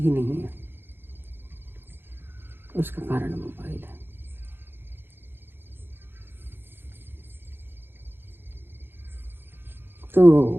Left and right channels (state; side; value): late; left; 0.10 ms